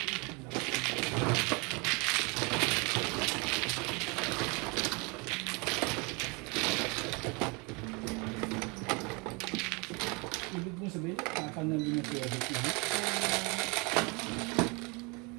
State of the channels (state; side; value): quieter; left; 29.6 dB